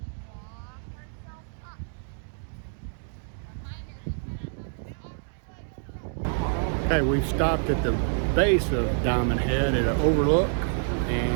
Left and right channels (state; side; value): silent; left; 60 dB below the other